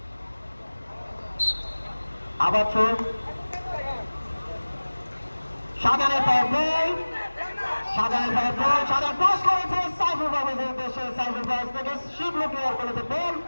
আবার থ্রো, শাহজাহানের পায়ে বল, শাহজাহান পাস করেছে সাইফুল পারভেজের উদ্দেশ্যে, সাইফুল পারভেজ থেকে শিবলু ক্লিয়ার করেছে বল,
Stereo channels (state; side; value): inverted; both; correlation -1.00